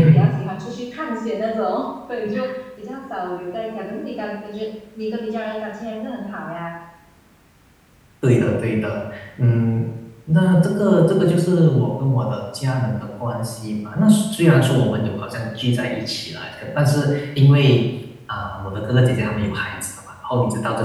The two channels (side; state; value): both; identical; correlation 1.00